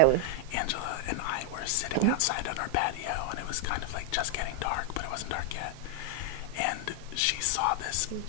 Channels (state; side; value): different; both; correlation 0.00